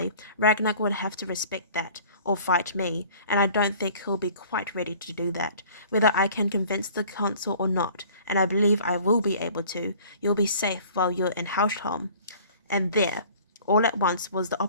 Ragnar would have to respect that, or fight me, and I don't think he'll be quite ready to do that, whether I can convince the council or not, and I believe I will be able to. You'll be safe while you're in Hausholm. And there, all at once, was the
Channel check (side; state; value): both; inverted; correlation -0.49